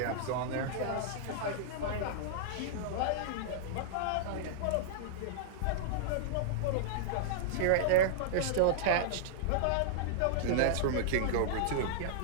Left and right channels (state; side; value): different; both; correlation -0.02